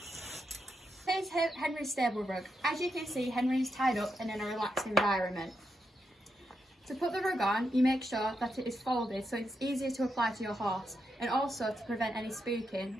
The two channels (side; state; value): both; normal; correlation 0.84